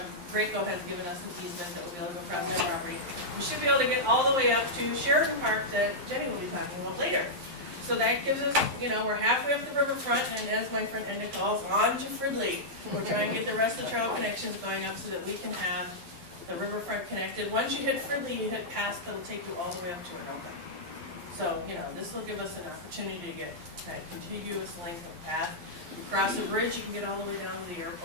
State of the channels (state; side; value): late; left; 11 ms